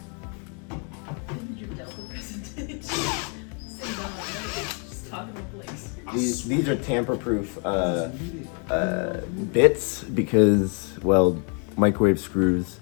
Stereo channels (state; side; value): quieter; right; 38.8 dB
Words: These are tamper-proof bits because, well, microwave screws